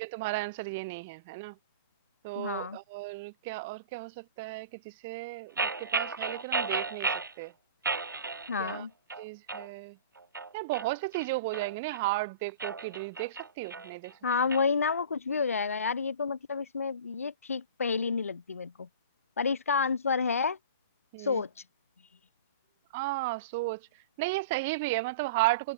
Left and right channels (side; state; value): both; inverted; correlation -0.35